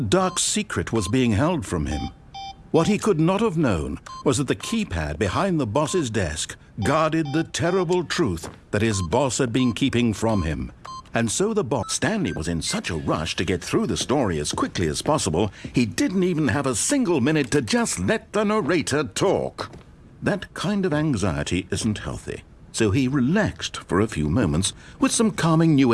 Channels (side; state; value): both; identical; correlation 1.00